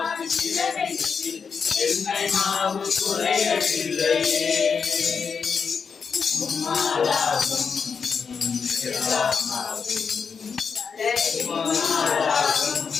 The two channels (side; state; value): right; quieter; 5.9 dB